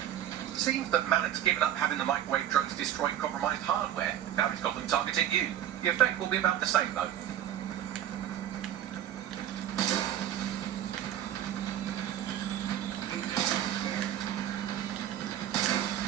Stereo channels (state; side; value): quieter; left; 11.2 dB